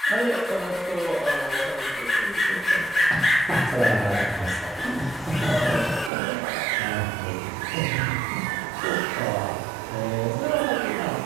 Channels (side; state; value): left; drops out; at 6.1 s